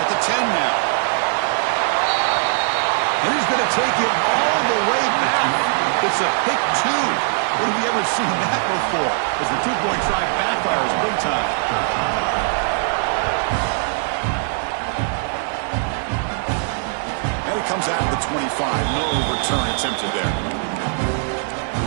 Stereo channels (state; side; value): silent; left; 65 dB below the other